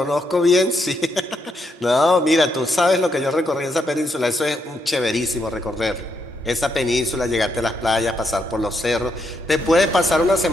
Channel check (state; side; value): normal; both; correlation 0.78